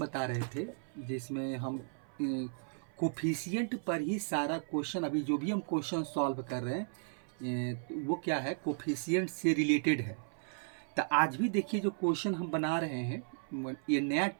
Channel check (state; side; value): silent; left; 54 dB below the other